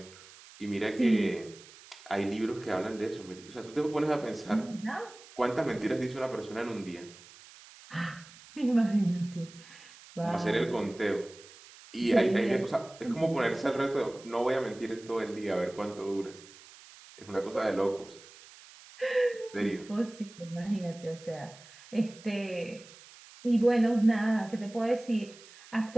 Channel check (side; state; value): right; noise; hiss, 21 dB below the sound